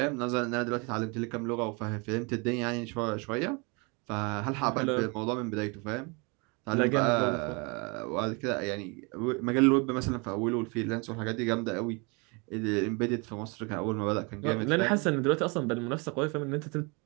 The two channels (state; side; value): quieter; left; 30.6 dB